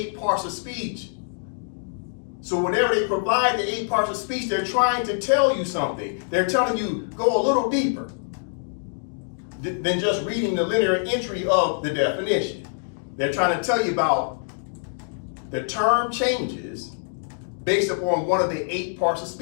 parts of speech. So whenever they provide the 8 parts of speech, they're trying to tell you something. They're telling you, go a little deeper than just reading the linear entry of the definition. They're trying to tell you about the term changes based upon one of the 8 parts of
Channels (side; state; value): right; silent; digital silence